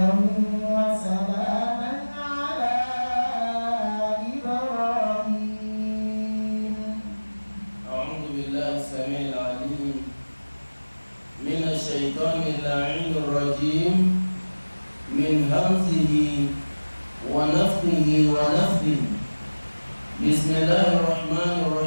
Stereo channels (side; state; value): both; inverted; correlation -1.00